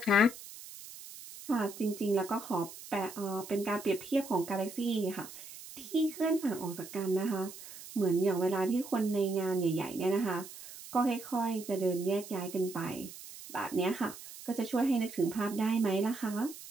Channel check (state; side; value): noise; right; hiss, 15 dB below the sound